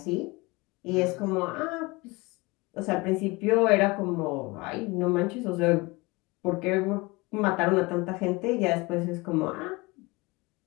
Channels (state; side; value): quieter; right; 24.3 dB